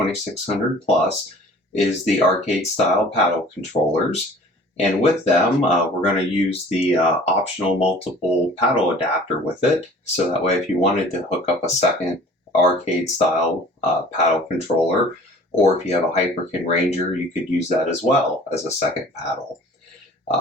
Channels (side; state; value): both; normal; correlation 0.48